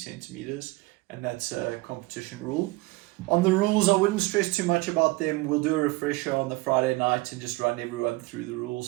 and that's a competition rule. On the rules, I wouldn't stress too much about them. We'll do a refresher on the Friday night and just run everyone through the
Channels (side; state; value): left; quieter; 22.1 dB